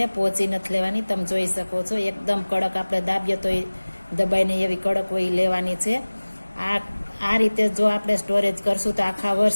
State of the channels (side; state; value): both; inverted; correlation -1.00